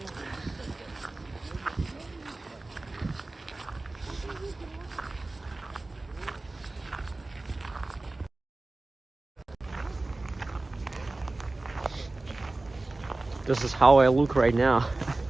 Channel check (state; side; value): quieter; left; 3.0 dB